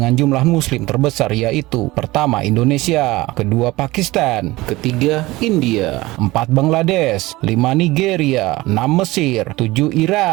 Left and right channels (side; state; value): left; quieter; 19.7 dB